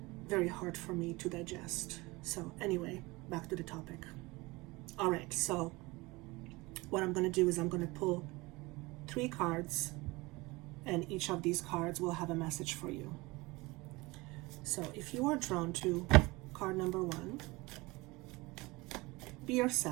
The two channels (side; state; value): left; quieter; 22.9 dB